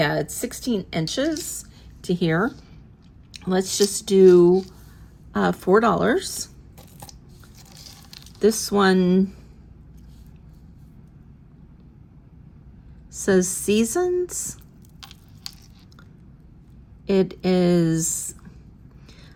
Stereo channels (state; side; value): identical; both; correlation 1.00